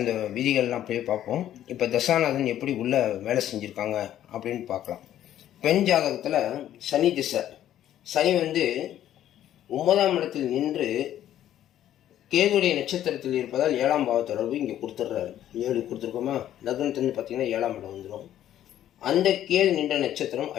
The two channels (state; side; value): quieter; right; 11.8 dB